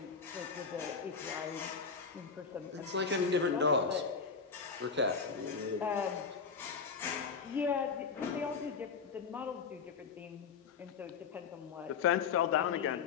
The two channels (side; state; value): right; quieter; 5.7 dB